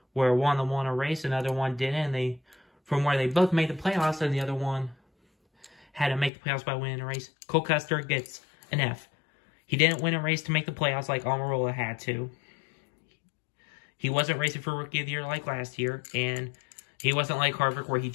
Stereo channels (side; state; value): right; drops out; at 6.3 s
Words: where one of them won a race, another one didn't, and from where they both made the playoffs, and the other one had to make the playoffs by winning a race. Cole Custer gets an F. He didn't win a race to make the playoffs like Almirola had to. He wasn't racing for Rookie of the Year like last year, and he wasn't like Harvick, where he